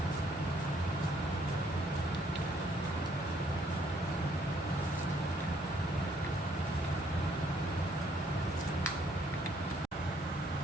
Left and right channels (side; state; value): both; normal; correlation 0.67